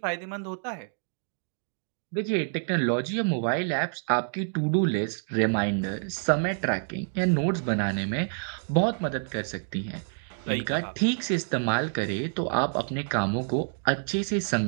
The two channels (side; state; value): left; silent; 59 dB below the other